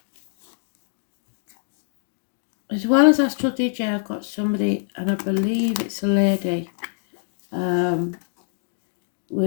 well as Astrology, I've got somebody, and I believe it's a lady,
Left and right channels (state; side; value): silent; right; digital silence